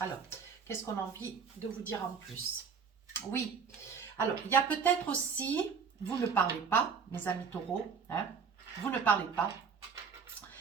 Alors, qu'est-ce qu'on a envie de vous dire en plus? Oui, alors, il y a peut-être aussi... Vous ne parlez pas, mes amis taureaux, hein, vous ne parlez pas.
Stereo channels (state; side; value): quieter; left; 6.1 dB